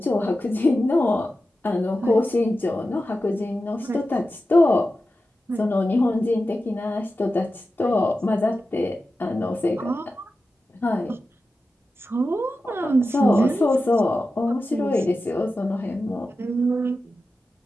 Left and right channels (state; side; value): normal; both; correlation 0.92